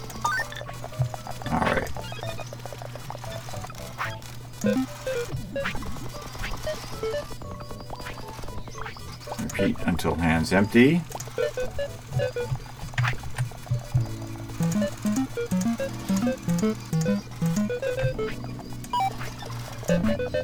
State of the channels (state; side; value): identical; both; correlation 1.00